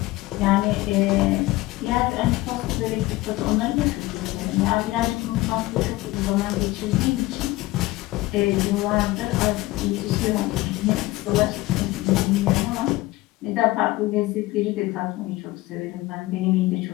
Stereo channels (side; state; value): right; quieter; 19.1 dB